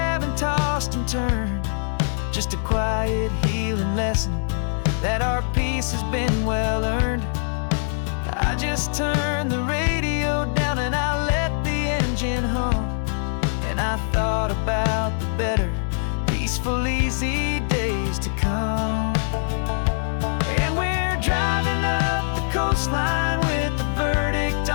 tossed and turned, just a quiet healing lesson that our peace has been well earned. I just turned the radio down and I let the engine hum, and I thought about the better, peaceful, easy days to come. And we're driving up the coastline with the verdict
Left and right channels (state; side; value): silent; right; 63 dB below the other